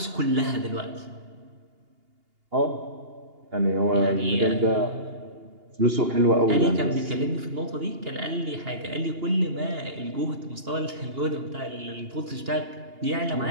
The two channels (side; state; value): left; late; 2.8 ms